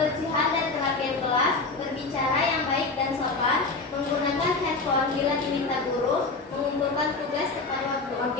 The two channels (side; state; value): right; quieter; 3.8 dB